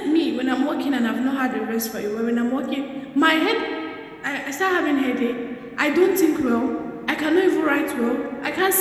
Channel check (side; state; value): both; identical; correlation 1.00